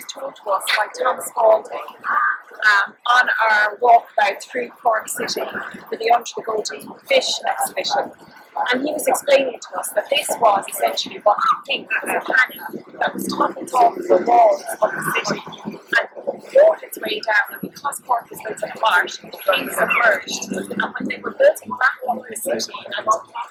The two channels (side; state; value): both; identical; correlation 1.00